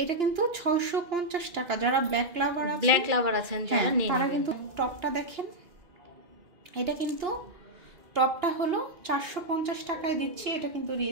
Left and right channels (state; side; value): late; left; 2.9 ms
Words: এটা কিন্তু 650 টাকা। যারা ব্ল্যাক লাভার আছেন যারা তারা কিন্তু টপটা দেখেন, এটা কিন্তু টপটা হলো 450 টাকায় দিচ্ছি, এটা কিন্তু